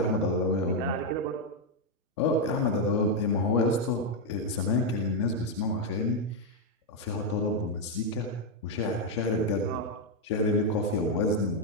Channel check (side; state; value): both; normal; correlation 0.02